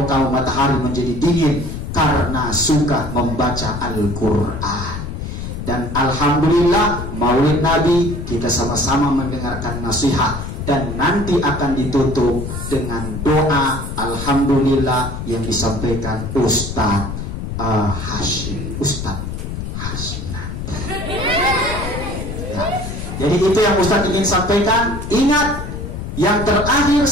kamu matahari menjadi dingin karena suka membaca Al-Quran. Dan Alhamdulillah Maulid Nabi kita sama-sama mendengarkan nasihat. Dan nanti akan ditutup dengan doa Alhamdulillah yang disampaikan Ustadz Hashim. Ustadz Hashim nanti ya. Jadi itu yang Ustadz ingin sampaikan. Ingat, yang terakhir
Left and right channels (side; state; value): left; noise; rumble, 6 dB below the sound